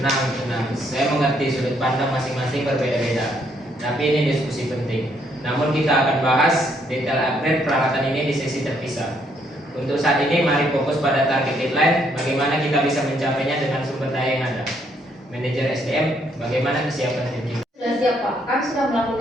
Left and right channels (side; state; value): both; normal; correlation 0.71